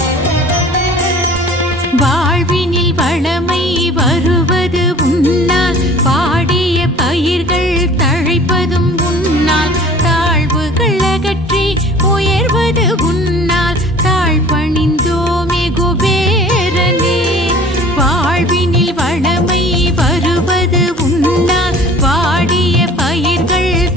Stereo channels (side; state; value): both; normal; correlation 0.47